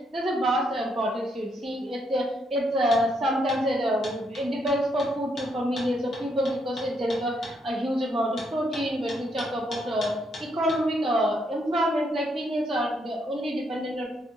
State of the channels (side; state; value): both; normal; correlation 0.75